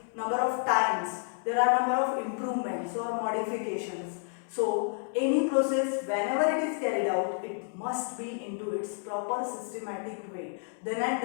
number of times there are number of improvements or modifications. So any process whenever it is carried out it must be into its proper systematic way, then and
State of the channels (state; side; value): silent; right; 58 dB below the other